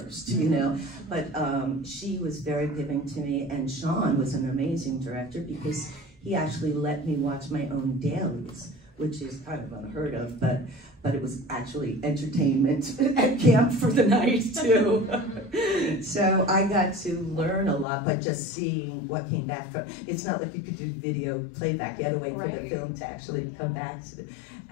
you know. But she was very giving to me, and Sean was an amazing director, because he actually let me watch my own dailies, which is kind of unheard of, but it was actually entertainment at camp for the night too. So I got to learn a lot by just seeing what came back from. It's not like you could do video playback. You had to wait for the film to actually come back.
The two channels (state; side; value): drops out; right; at 17.9 s